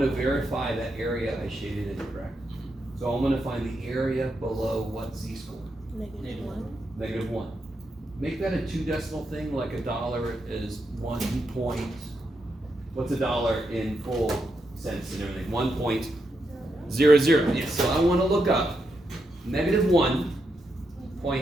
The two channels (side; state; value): both; normal; correlation 0.83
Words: to verify that area I shaded in, correct? So I'm going to find the area below what z-score? -1. -1. Make that a 2 decimal thing, like a dollar is 1 point. What's a dollar in full cents and everything? 1.00. Yes, so I want to look up